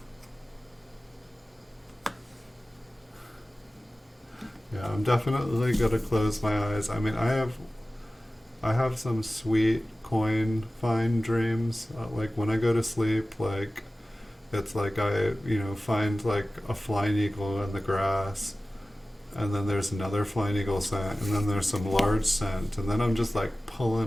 Yeah, I'm definitely gonna close my eyes. I mean, I have some sweet coin find dreams. Like when I go to sleep, like it's like I, find like a flying eagle in the grass, and then there's another flying eagle scent, and then there's some large scent, and then I'm just like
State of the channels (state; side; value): normal; both; correlation 0.96